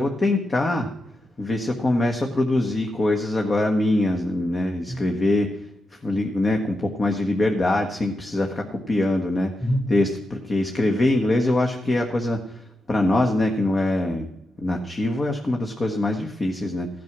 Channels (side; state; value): both; normal; correlation 0.87